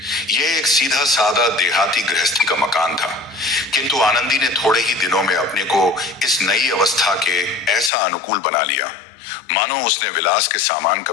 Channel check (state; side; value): drops out; right; at 7.9 s